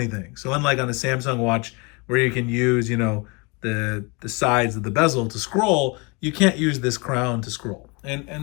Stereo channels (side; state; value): right; quieter; 29.4 dB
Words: So unlike on a Samsung watch where you can use, the sides of the bezel to scroll, you can't use this crown to scroll.